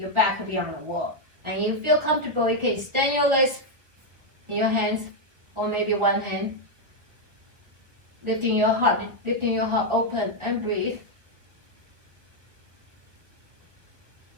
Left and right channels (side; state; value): left; late; 1.2 ms